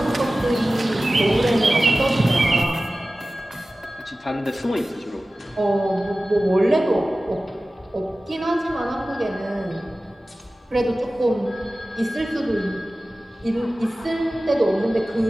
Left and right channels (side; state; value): both; normal; correlation 0.96